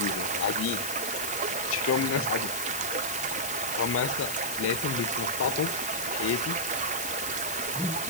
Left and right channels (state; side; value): noise; left; hiss, 5 dB below the sound